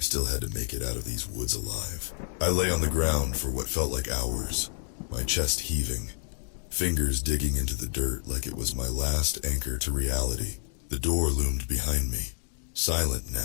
still had to make it out of these woods alive. I lay on the ground for what felt like hours, my chest heaving, fingers digging into the dirt like it was my last anchor to reality. The door loomed behind me, silent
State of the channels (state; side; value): silent; right; 59 dB below the other